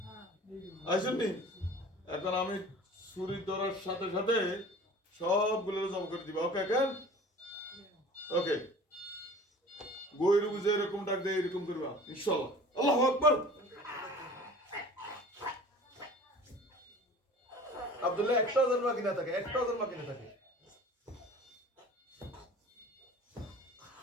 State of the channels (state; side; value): normal; both; correlation 0.43